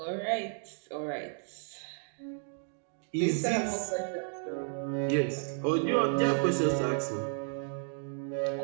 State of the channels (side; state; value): left; silent; 56 dB below the other